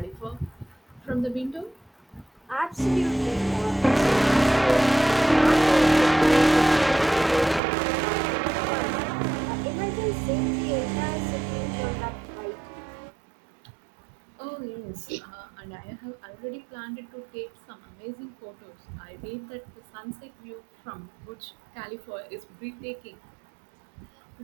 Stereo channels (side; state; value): left; drops out; at 7.6 s